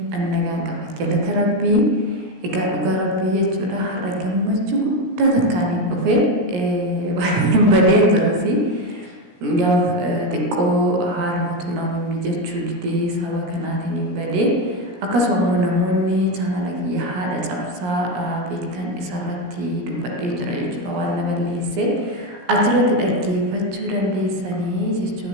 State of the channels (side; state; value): left; late; 17 ms